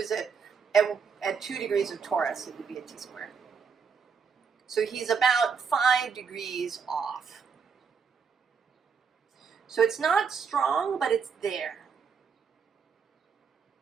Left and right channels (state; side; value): quieter; left; 6.1 dB